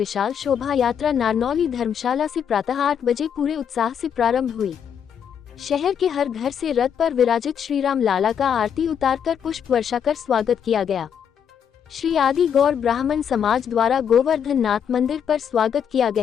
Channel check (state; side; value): quieter; right; 8.1 dB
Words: शोभा यात्रा नारनौली धर्मशाला से प्रातः 8 बजे पूरे उत्साह से प्रारंभ हुई। शहर के हर घर से रथ पर विराजित श्री राम लाला का आरती उतारकर पुष्प वर्षा कर स्वागत किया गया। श्री आदि गौर ब्राह्मण समाज द्वारा गोवर्धन नाथ मंदिर पर स्वागत किया